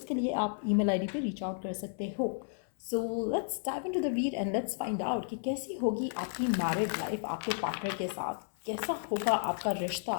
लिए आप ईमेल आईडी पे रीच आउट कर सकते हो। So let's dive into the read and let's find out कि कैसी होगी आपकी मैरिड लाइफ आपके पार्टनर के साथ, कैसा होगा आपका रिश्ता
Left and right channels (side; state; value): right; silent; 56 dB below the other